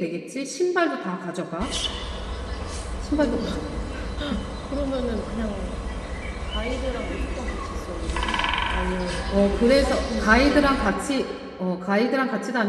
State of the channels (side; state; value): both; identical; correlation 1.00